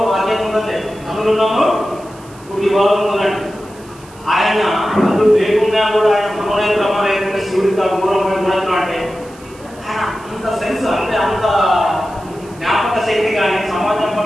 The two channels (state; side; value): noise; right; hiss, 24 dB below the sound